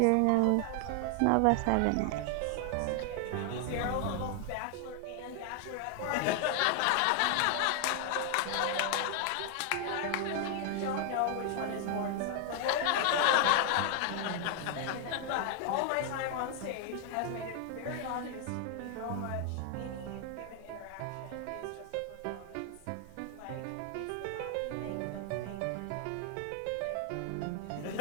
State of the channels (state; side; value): different; both; correlation 0.00